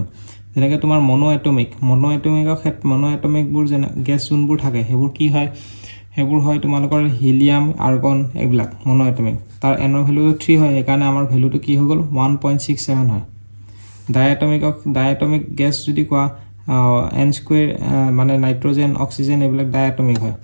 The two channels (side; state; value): both; inverted; correlation -1.00